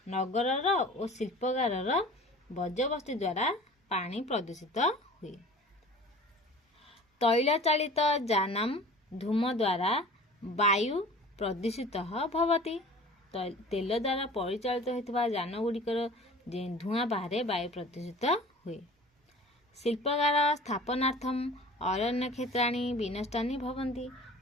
नगरर और शिल्पकारर वर्ज्यवस्तु द्वारा पानी प्रदूषित हुए। तैल चालित जानम धूम द्वारा वायु प्रदूषित भवति। तेल द्वारा परिचालित होता जान गुड़िकर धूआं बाहर वायु प्रदूषित हुए। शिल्पकार स्थापनार्थम अरण्य क्षेत्राणि विनष्टानि भवन्ति।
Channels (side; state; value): both; normal; correlation 0.43